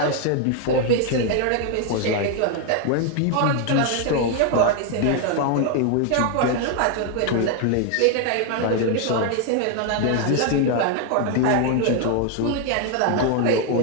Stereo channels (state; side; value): different; both; correlation 0.01